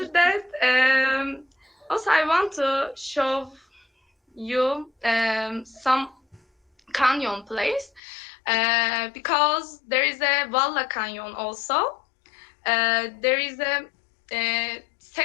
that, also I want to show you some canyon place, because there is a Valla Canyon also. There is a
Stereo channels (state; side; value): drops out; right; at 8.0 s